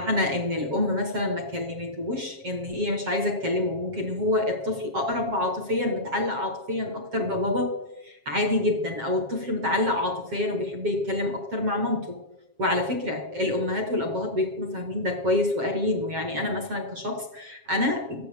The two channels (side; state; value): left; late; 7.4 ms